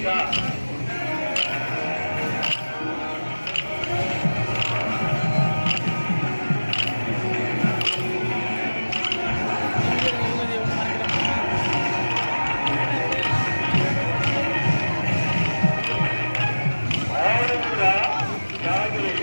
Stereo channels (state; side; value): inverted; both; correlation -1.00